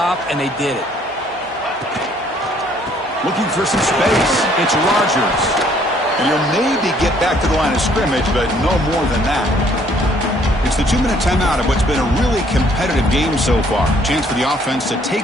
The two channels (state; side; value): normal; both; correlation 0.62